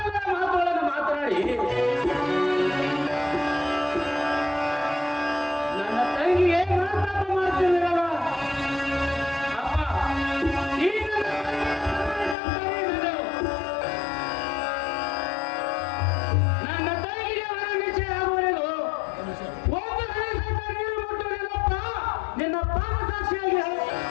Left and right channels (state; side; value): drops out; right; at 12.4 s